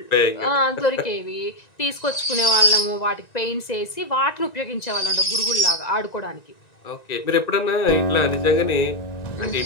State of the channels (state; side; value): late; right; 1.9 ms